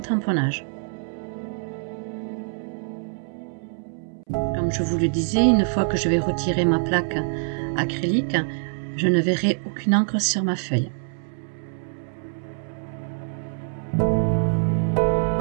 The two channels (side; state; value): left; silent; 62 dB below the other